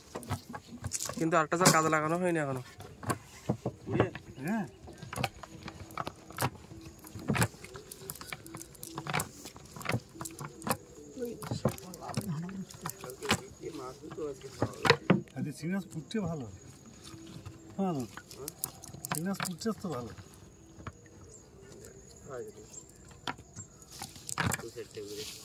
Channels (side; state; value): both; identical; correlation 1.00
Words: কিন্তু আরেকটা জাল কাজে লাগানো হয়নি এখনো হ্যাঁ সিগনাস ফুটছে ভালো হ্যাঁ সিগনাস ফুটছে তো ভালো